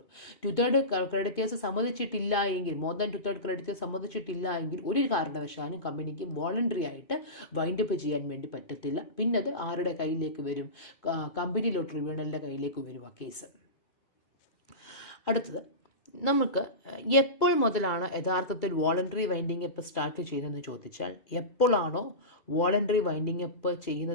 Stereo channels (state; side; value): late; right; 2.3 ms